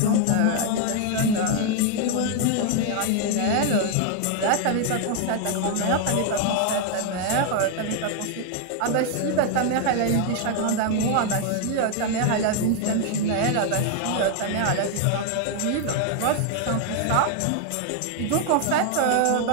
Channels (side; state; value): both; different; correlation 0.00